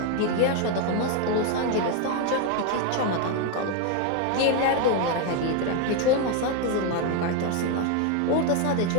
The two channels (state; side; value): different; both; correlation 0.01